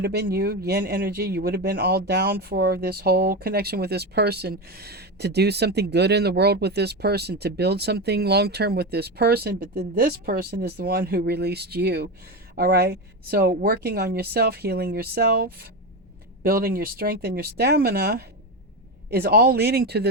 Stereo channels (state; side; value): normal; both; correlation 0.17